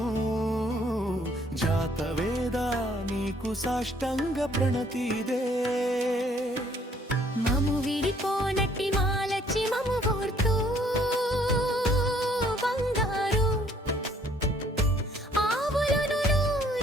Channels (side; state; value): both; normal; correlation 0.63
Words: జాతవేద నీకు సాష్టంగ ప్రణతిదే మము విడిపోనట్టి మాలచ్చి మము కోర్తూ